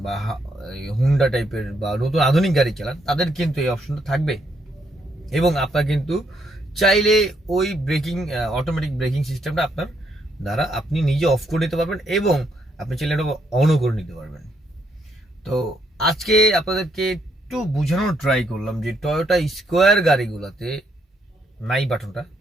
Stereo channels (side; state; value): both; normal; correlation 0.74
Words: বা হুন্ডা টাইপের বা নতুন আধুনিক গাড়ি চালান, তাদের কিন্তু এই অপশনটা থাকবে এবং আপনার কিন্তু চাইলে ওই ব্রেকিং অটোমেটিক ব্রেকিং সিস্টেমটা আপনার দ্বারা আপনি নিজে অফ করে নিতে পারবেন এবং আপনি চাইলে এটা অনও করে নিতে পারবেন। তো আজকে আপনাদেরকে একটু বোঝানোর ট্রাই করলাম যে টয়োটা স্কোয়ার গাড়িগুলোতে নাই বাটনটা,